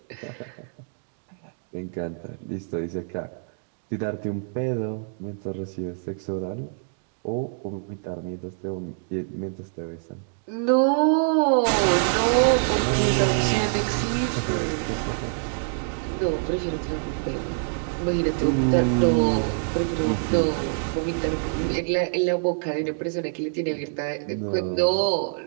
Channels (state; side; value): silent; left; digital silence